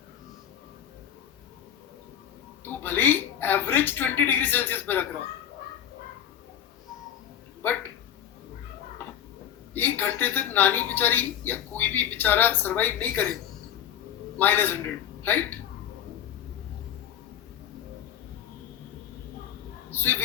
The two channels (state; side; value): quieter; right; 10.0 dB